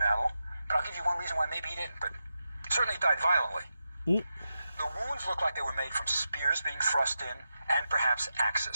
but I'll give you one reason why maybe he didn't, but certainly he died violently. The wounds look like they were made from spears being thrust in and perhaps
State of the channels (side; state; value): both; inverted; correlation -0.90